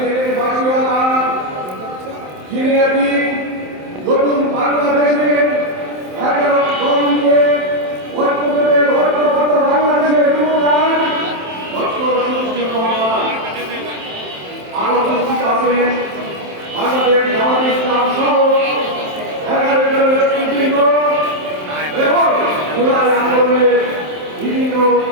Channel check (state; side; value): late; left; 27 ms